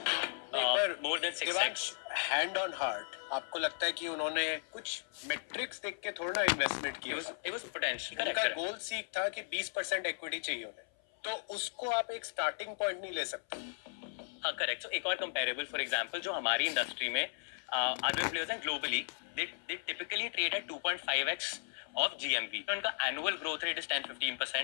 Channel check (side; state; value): right; silent; 54 dB below the other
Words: more than 6x। Hand on heart आपको लगता है कि उन्होंने कुछ मेट्रिक्स देख के थोड़ा ना इन्वेस्टमेंट It किया? was potential. उनका Correct. गोल सीख था कि 20% इक्विटी चाहिए उन्हें, तो उसको आप एक स्टार्टिंग पॉइंट नहीं ले सकते। हाँ करेक्ट. So एक और कंपेरेबल फॉर एग्जांपल जो हमारी इंडस्ट्री में अदर प्लेयर्स हैं globally they typically trade at 2.5x of GMV. तो उनका annual growth rate is